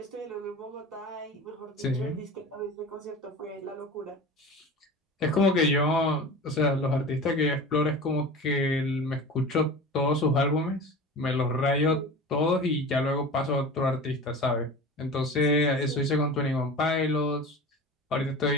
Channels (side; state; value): both; normal; correlation 0.34